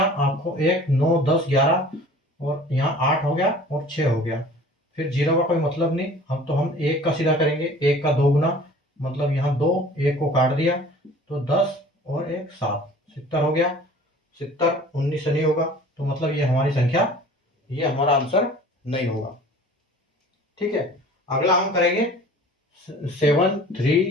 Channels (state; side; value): normal; both; correlation 0.46